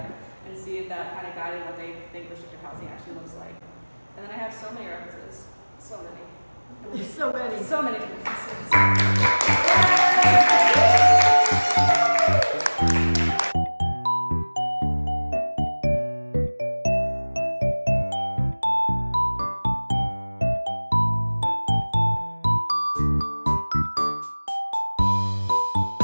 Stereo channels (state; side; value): inverted; both; correlation -1.00